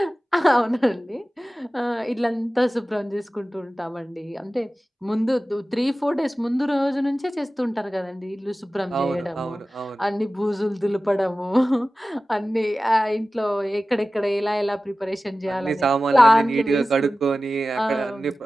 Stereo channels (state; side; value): normal; both; correlation 0.96